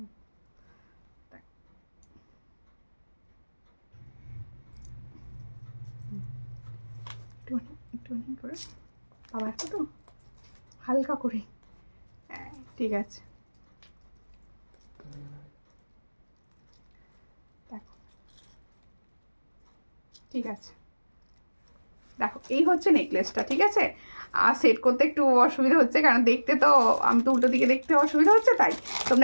একটুখানি করে বাবা, একটা তো হালকা করে। হ্যাঁ ঠিক আছে। দেখো ঠিক আছে, দেখো এই হচ্ছে নেকলেসটা, ঠিক আছে। আর সেট করতে একটু অসুবিধা হচ্ছে, কারণ দেখতে তো আমি তো উল্টো দিকে দেখতে অসুবিধা হচ্ছে, তাই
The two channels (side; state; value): both; inverted; correlation -1.00